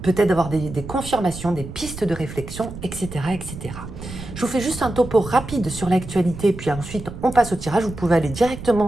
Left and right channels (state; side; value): noise; right; rumble, 11 dB below the sound